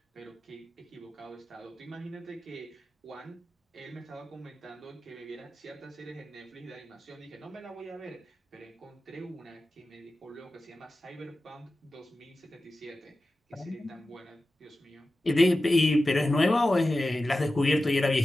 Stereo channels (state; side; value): normal; both; correlation 0.94